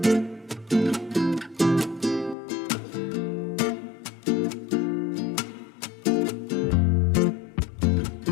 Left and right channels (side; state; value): right; drops out; at 2.4 s